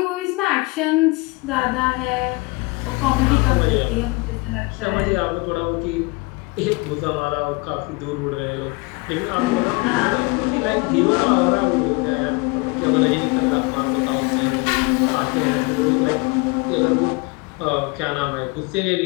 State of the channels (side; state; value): right; quieter; 26.3 dB